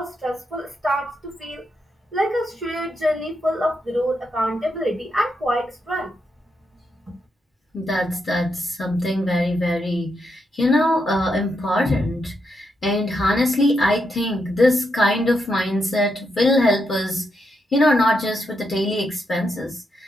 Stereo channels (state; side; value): normal; both; correlation 0.82